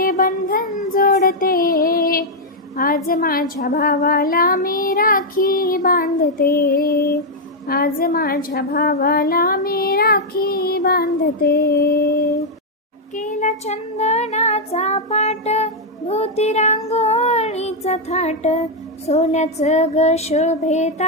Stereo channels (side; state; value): both; normal; correlation -0.02